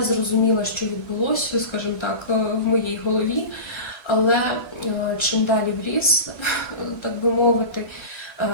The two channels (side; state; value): right; late; 1.3 ms